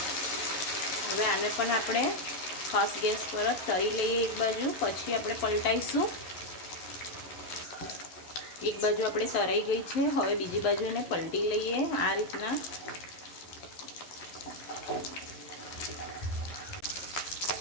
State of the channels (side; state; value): right; late; 11 ms